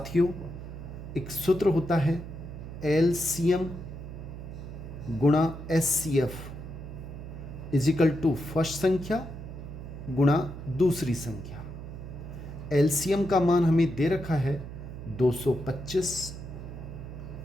एक सूत्र होता है LCM × SCF। Is equal to first संख्या गुणा दूसरी संख्या। एलसीएम का मान हमें दे रखा है 225,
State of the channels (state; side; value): noise; right; hum, 10 dB below the sound